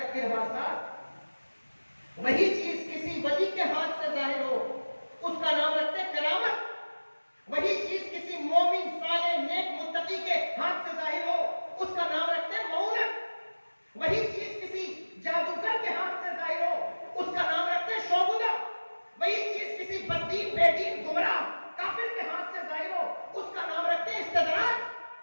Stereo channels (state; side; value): inverted; both; correlation -1.00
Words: ارہاسات۔ وہی چیز کسی ولی کے ہاتھ سے ظاہر ہو، اس کا نام رکھتے ہیں کرامت۔ وہی چیز کسی مومن صالح نیک متقی کے ہاتھ سے ظاہر ہو، اس کا نام رکھتے ہیں معونت۔ وہی چیز کسی جادوگر کے ہاتھ سے ظاہر ہو، اس کا نام رکھتے ہیں شعبدہ۔ وہی چیز کسی بددین بے دین گمراہ کافر کے ہاتھ سے ظاہر ہو، اس کا نام رکھتے ہیں استدراج۔